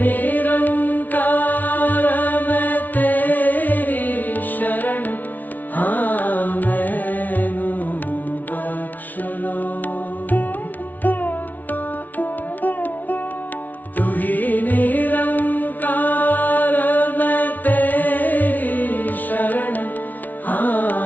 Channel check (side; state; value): right; late; 0.079 ms